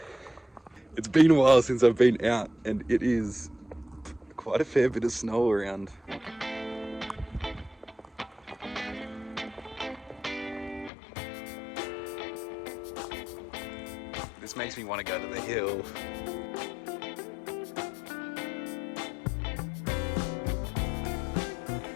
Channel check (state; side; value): drops out; right; at 10.9 s